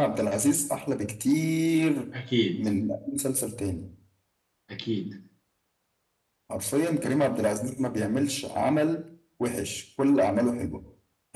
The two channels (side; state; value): both; identical; correlation 1.00